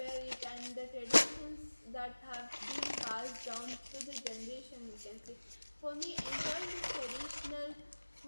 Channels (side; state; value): both; inverted; correlation -1.00